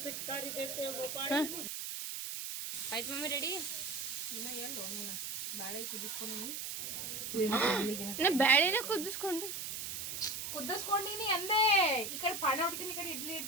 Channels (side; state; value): right; noise; hiss, 5 dB below the sound